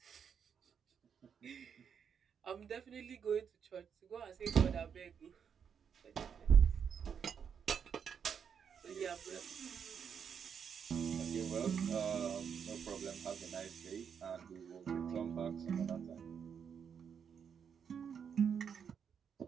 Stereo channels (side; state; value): left; quieter; 7.3 dB